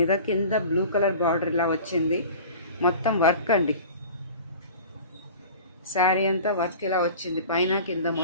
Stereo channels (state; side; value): inverted; both; correlation -0.40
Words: కింద బ్లూ కలర్ బార్డర్ ఇలా వచ్చింది. మొత్తం వర్క్ అండి. శారీ అంతా వర్క్ ఇలా వచ్చింది. పైన కింద